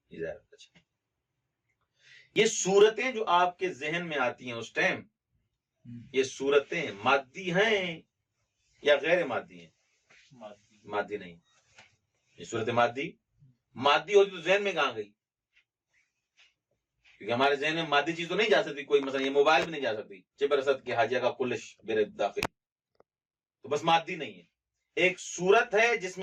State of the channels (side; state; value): both; identical; correlation 1.00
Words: کی زیارت۔ اچھا، یہ صورتیں جو آپ کے ذہن میں آتی ہیں اس ٹائم، یہ صورتیں مادی ہیں یا غیر مادی ہیں؟ مادی نہیں، یہ صورت مادی ہوتی تو ذہن میں کہاں گئی؟ کیونکہ ہمارے ذہن میں مادی چیز تو نہیں جا سکتی، کوئی مثلا یہ موبائل بھی نہیں جا سکتی، چبرست کے حاجیہ کا کلش میرے داخل، تو بس مادی نہیں ہے، ایک صورت ہے جس